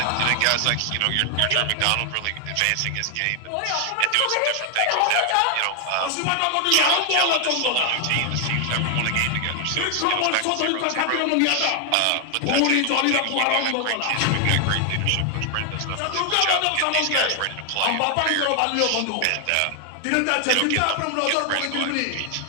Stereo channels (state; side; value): different; both; correlation 0.00